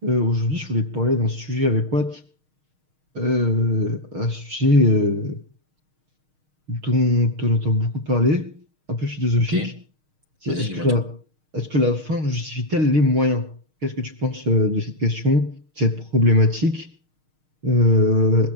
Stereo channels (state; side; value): late; left; 6.5 ms